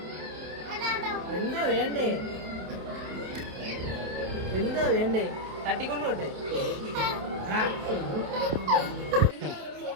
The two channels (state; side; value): late; left; 28 ms